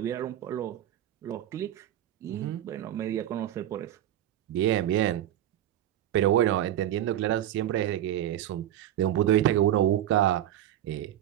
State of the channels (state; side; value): quieter; left; 12.1 dB